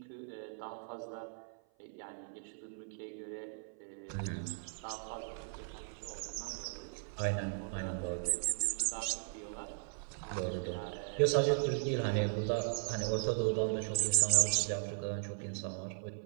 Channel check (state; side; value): silent; left; 53 dB below the other